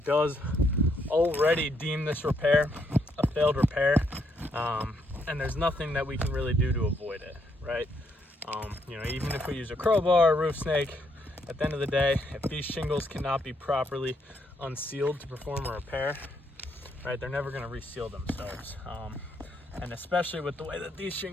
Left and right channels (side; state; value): both; normal; correlation 0.74